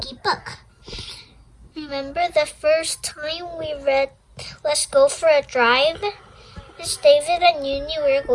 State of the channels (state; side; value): identical; both; correlation 1.00